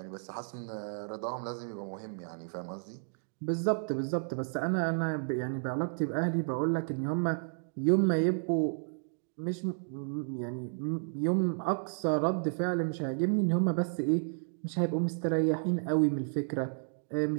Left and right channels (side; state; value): left; silent; digital silence